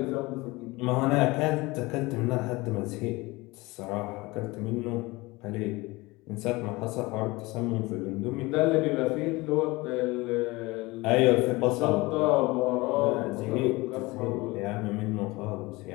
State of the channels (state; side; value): quieter; right; 22.4 dB